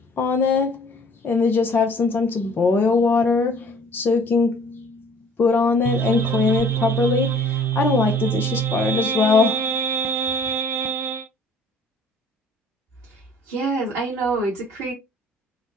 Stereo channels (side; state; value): both; normal; correlation 0.54